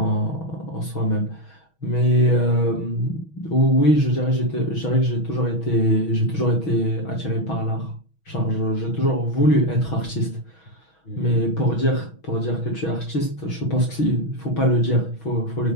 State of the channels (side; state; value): right; late; 6.2 ms